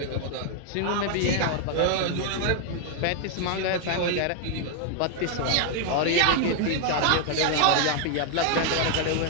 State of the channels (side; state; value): both; different; correlation 0.00